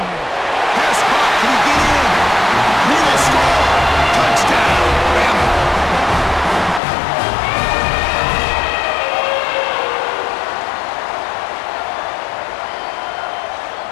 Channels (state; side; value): drops out; right; at 6.8 s